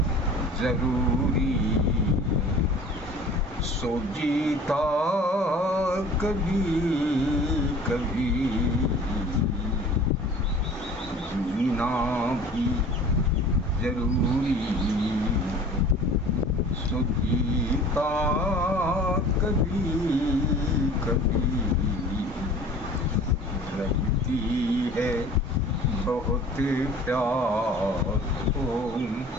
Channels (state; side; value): normal; both; correlation 0.45